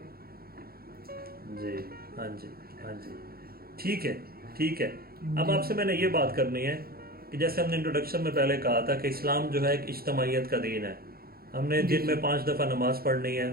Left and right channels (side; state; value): left; late; 0.44 ms